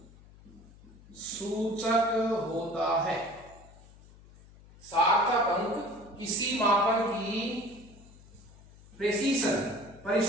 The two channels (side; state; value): left; noise; hum, 23 dB below the sound